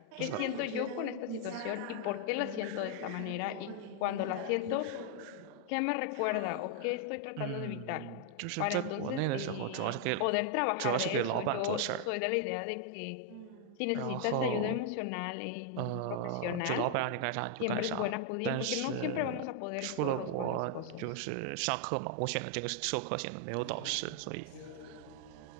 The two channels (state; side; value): different; both; correlation 0.00